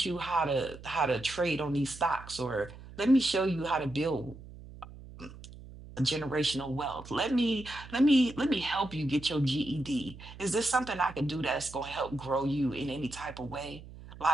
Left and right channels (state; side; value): noise; right; hum, 16 dB below the sound